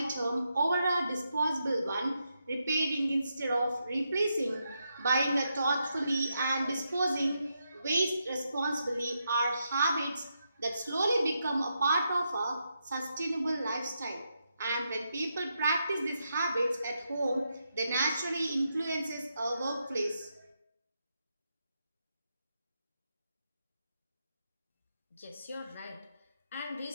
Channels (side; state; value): both; inverted; correlation -0.83